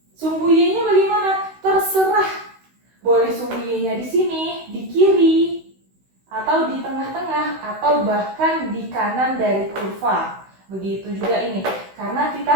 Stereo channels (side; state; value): left; late; 16 ms